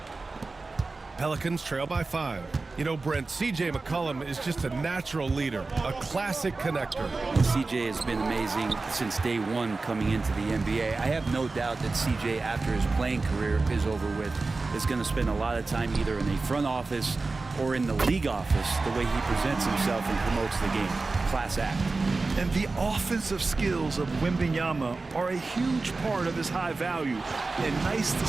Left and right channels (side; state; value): left; quieter; 3.7 dB